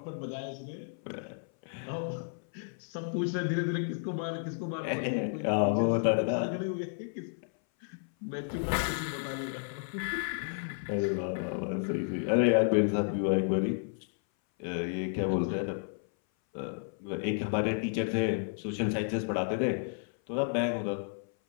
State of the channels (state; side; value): silent; right; 56 dB below the other